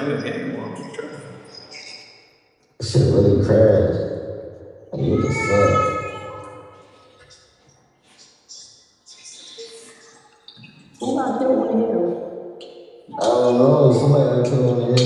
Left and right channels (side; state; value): both; identical; correlation 1.00